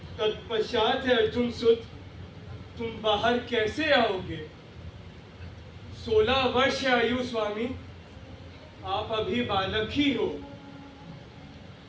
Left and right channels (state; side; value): identical; both; correlation 1.00